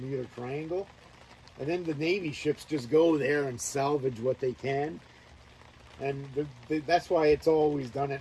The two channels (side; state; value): both; identical; correlation 1.00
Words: Triangle. And then the Navy ships just go there and salvage what they can. And that's why it's always done